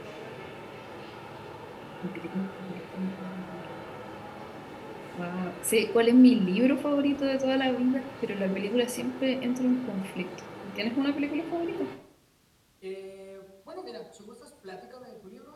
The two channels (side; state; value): both; identical; correlation 1.00